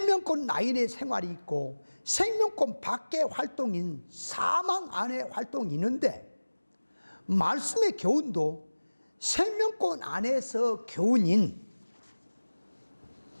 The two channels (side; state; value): both; inverted; correlation -1.00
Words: 라인의 생활이 있고 생명권 밖의 활동인 사망 안의 활동이 있는데 말씀의 교훈도 생명권 안에서 교훈인지